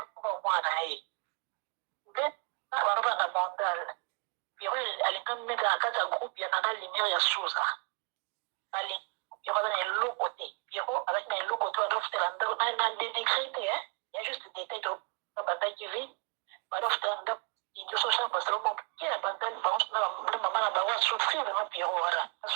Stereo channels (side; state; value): left; quieter; 34.7 dB